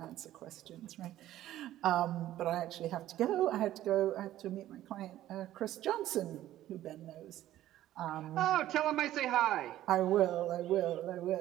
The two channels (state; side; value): quieter; left; 13.6 dB